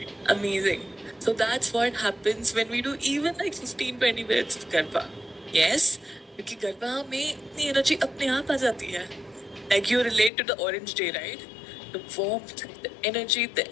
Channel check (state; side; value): drops out; right; at 10.3 s